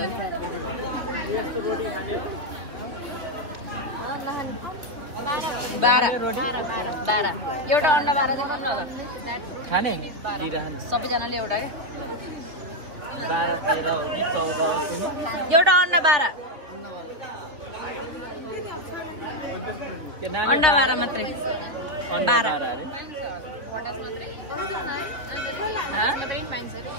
बाह्र एउटा अन्डा 12 चाहिँ खानु होला खाने सबैजनाले एउटा क्या एउटा अन्डा 12 अन्डा 12 मात्रै 12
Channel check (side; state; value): left; late; 3.1 ms